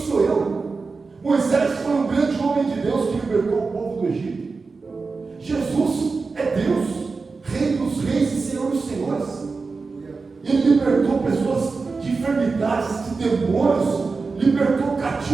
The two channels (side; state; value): left; quieter; 4.3 dB